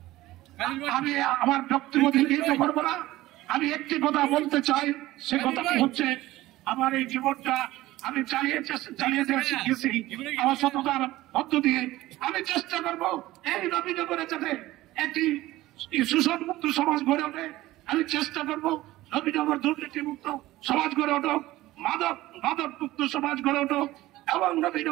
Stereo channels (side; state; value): left; quieter; 17.0 dB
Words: না, আমি একটি কথা বলতে চাই। সে কথাটি হচ্ছে আমার এই জীবনটা আমি চালিয়ে গেছি আমার সততার মধ্য দিয়ে। আমি চেষ্টা করবো এই নবীনগরে যাতে একটি শোষণমুক্ত সমাজ গড়ে ওঠে। আমি চেষ্টা করবো নবীনগর দুর্নীতি মুক্ত সমাজ গড়ে উঠুক, মাদক মুক্ত সমাজ গড়ে উঠুক এবং